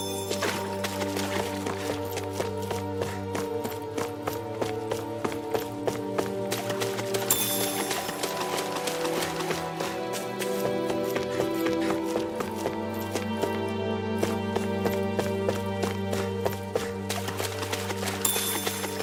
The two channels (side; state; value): both; identical; correlation 1.00